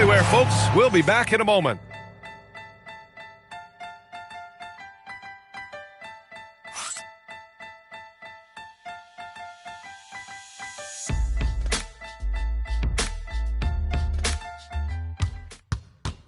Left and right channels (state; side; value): identical; both; correlation 1.00